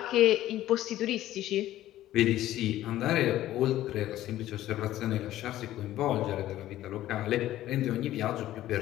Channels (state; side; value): quieter; right; 14.0 dB